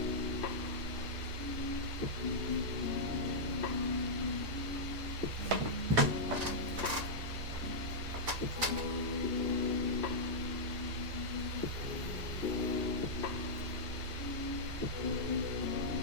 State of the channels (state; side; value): late; left; 1.9 ms